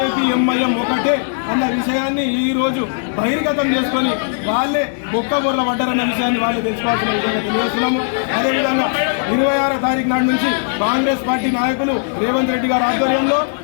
ఎంఐఎం ఒకటే అన్న విషయాన్ని ఈ రోజు బహిర్గతం చేసుకొని వాళ్ళే బొక్కబొర్ల పడ్డారన్న విషయాన్ని వాళ్ళు తెలుసుకోవాల్సిన విధంగా తెలియజేస్తున్నాము. అదేవిధంగా 26వ తారీఖు నాటి నుంచి కాంగ్రెస్ పార్టీ నాయకులు రేవంత్ రెడ్డి గారి ఆధ్వర్యంలో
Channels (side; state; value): right; silent; 65 dB below the other